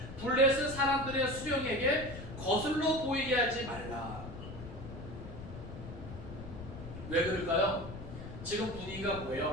블레셋 사람들의 수령에게 거슬러 보이게 하지 말라. 왜 그럴까요? 지금 분위기가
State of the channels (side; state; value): left; noise; rumble, 11 dB below the sound